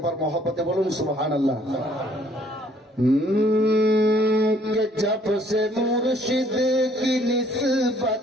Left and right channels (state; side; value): normal; both; correlation 0.61